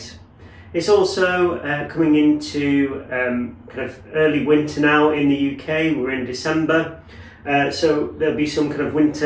It's also coming into kind of early winter now in the UK. We're in December, so there'll be some kind of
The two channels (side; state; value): both; identical; correlation 1.00